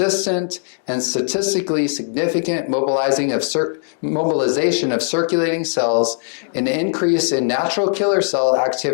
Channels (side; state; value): right; silent; 57 dB below the other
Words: and statistically significant mobilization of circulating cells, an increase in natural killer cell